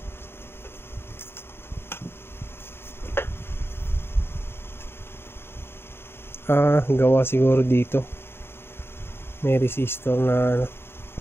Gawa siguro dito. May resistor na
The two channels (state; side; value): late; right; 0.11 ms